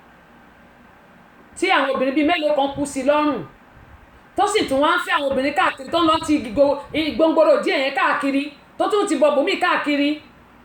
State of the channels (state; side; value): identical; both; correlation 1.00